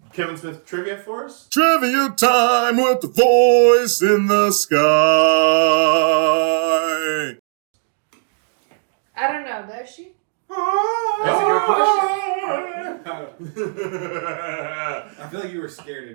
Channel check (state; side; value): silent; left; digital silence